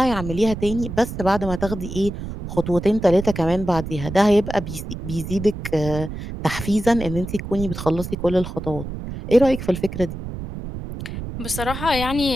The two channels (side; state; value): right; noise; rumble, 8 dB below the sound